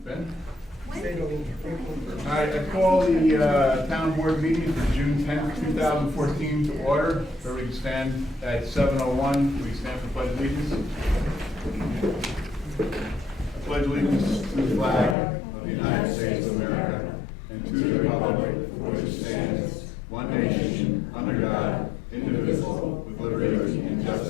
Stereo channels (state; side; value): drops out; right; at 15.2 s